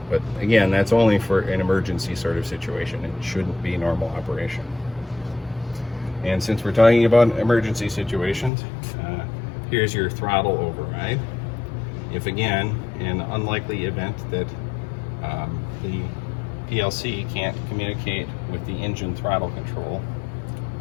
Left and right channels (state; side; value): drops out; right; at 8.5 s